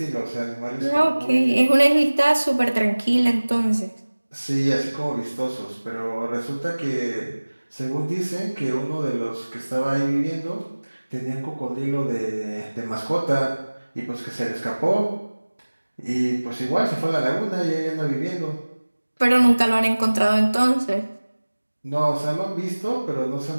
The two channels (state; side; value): inverted; both; correlation -1.00